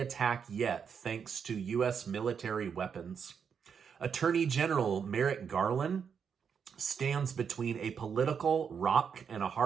yet, thanks to U.S. military weapons. Attorney General Merrick Garland stands between a political rock and a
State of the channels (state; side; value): quieter; left; 6.9 dB